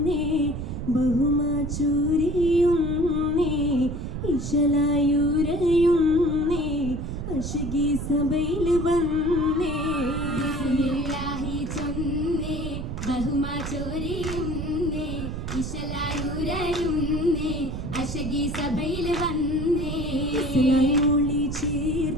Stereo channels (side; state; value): right; noise; rumble, 5 dB below the sound